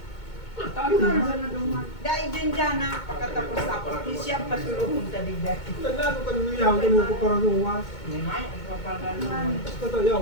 Dahil din dyan na pagkatapos tapos, di siya pasulungan taligdag. Naglago ka nung iyaw, ganun ko parang luwas. Basta iyaw,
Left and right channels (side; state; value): right; late; 2.2 ms